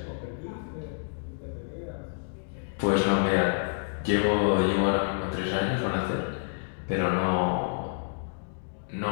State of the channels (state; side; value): silent; right; digital silence